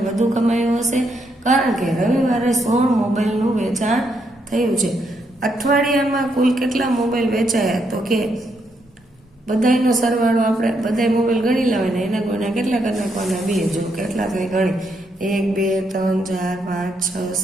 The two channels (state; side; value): normal; both; correlation 0.77